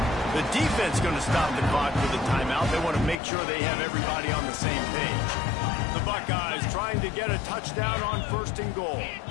The defense going to stop the clock for the timeout. They want to make sure they have everybody on the same page. The Buckeyes trying to get a touchdown on 1st and goal.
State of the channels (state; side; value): drops out; right; at 3.2 s